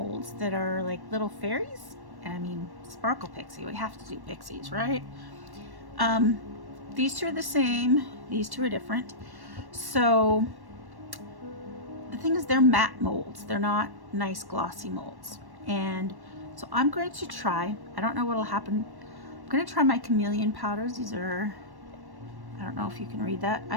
that are like little fairies. I mean, Sparkle Pixie, we have to do pixies, right? These two are the same, these two are different. So the thing is, they're matte molds, they're not nice glossy molds. And so I'm going to try, I don't know what'll happen. I'm going to try my Chameleon powders. These are, I don't know if you can read that.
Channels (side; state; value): left; late; 1.1 ms